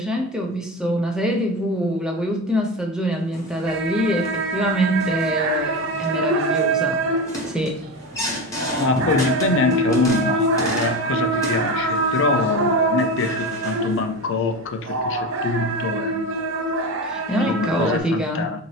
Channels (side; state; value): both; normal; correlation 0.22